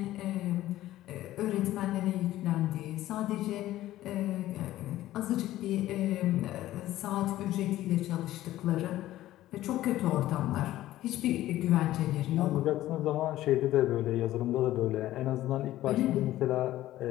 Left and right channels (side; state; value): right; quieter; 14.7 dB